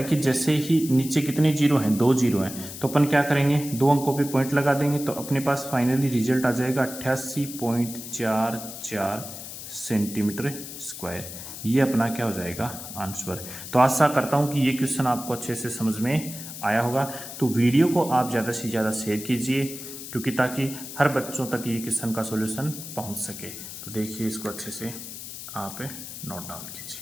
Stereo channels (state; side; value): noise; left; hiss, 11 dB below the sound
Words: कि जैसे ही नीचे कितने जीरो हैं 2 जीरो हैं तो अपन क्या करेंगे 2 अंकों पे पॉइंट लगा देंगे तो अपने पास फाइनली रिजल्ट आ जाएगा 88.44 सेंटीमीटर स्क्वायर। ये अपना क्या हो जाएगा आंसर। तो आशा करता हूँ कि ये क्वेश्चन आपको अच्छे से समझ में आया होगा। तो वीडियो को आप ज़्यादा से ज़्यादा शेयर कीजिए, क्योंकि ताकि हर बच्चों तक ये क्वेश्चन का सॉल्यूशन पहुंच सके। तो देखिए, इसको अच्छे से आप नोट डाउन